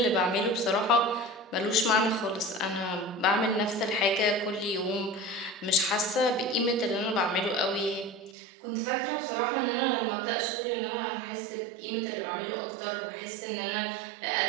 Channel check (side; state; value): left; drops out; at 8.3 s